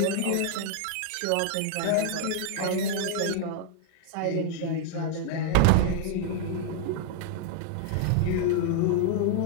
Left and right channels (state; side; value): different; both; correlation -0.01